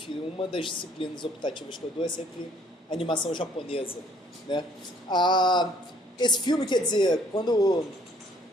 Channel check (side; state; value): both; normal; correlation 0.61